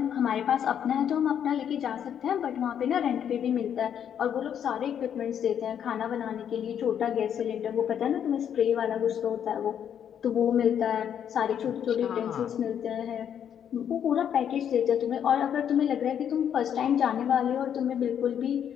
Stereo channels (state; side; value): quieter; right; 8.9 dB